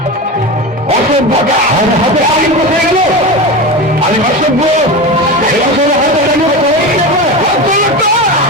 অসভ্যতা হাতে আগে কোথায় গেল? আমি অসভ্য?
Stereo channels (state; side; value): normal; both; correlation 0.24